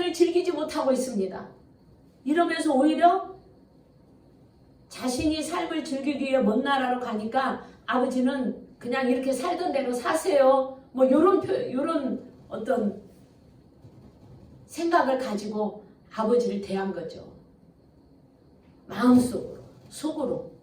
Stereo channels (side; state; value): both; identical; correlation 1.00